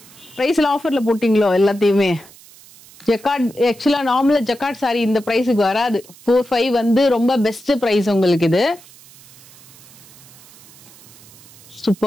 பிரைஸ்ல ஆஃபர்ல போட்டீங்களோ எல்லாத்தையுமே? ஜக்கார்ட் ஆக்சுவலா நார்மலா ஜக்கார்ட் சாரி இந்த பிரைஸுக்கு வராது. 45 வந்து ரொம்ப பெஸ்ட் பிரைஸ் உங்களுக்கு. இது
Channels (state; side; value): noise; right; hiss, 23 dB below the sound